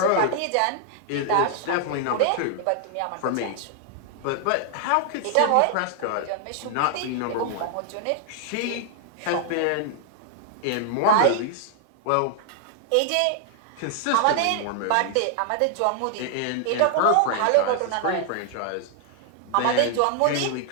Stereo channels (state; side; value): different; both; correlation 0.00